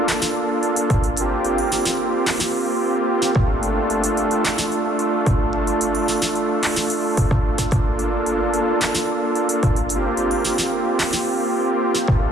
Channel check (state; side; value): normal; both; correlation 0.69